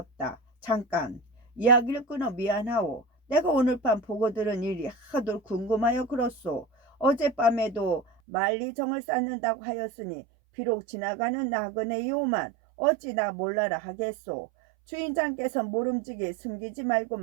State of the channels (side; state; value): left; drops out; at 8.1 s